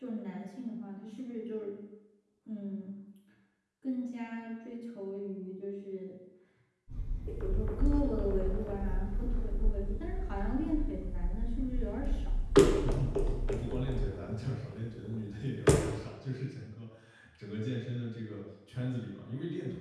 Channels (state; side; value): identical; both; correlation 1.00